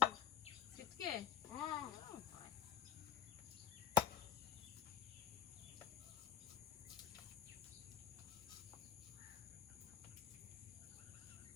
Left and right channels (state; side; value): quieter; right; 10.3 dB